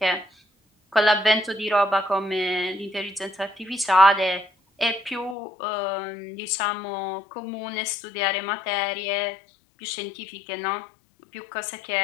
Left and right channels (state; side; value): drops out; right; at 5.4 s